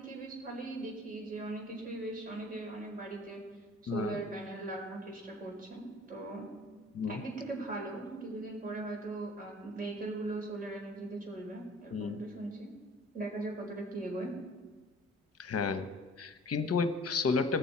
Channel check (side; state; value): both; normal; correlation 0.49